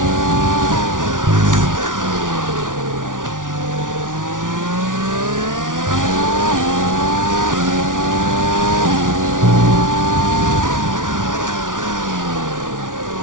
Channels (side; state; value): left; late; 0.88 ms